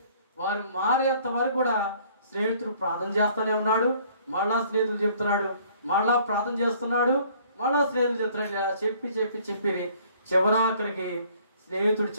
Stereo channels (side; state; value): both; inverted; correlation -0.58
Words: వారు మారేంత వరకు కూడా స్నేహితుడు ప్రార్థన చేస్తూనే ఉన్నాడు. మళ్ళా స్నేహితులు చెప్తున్నాడు, మళ్ళా ప్రార్థన చేస్తున్నాడు, మళ్ళా స్నేహితులు చెప్తున్నాడు. ఇలా చెప్పి చివరాఖరికి స్నేహితుడు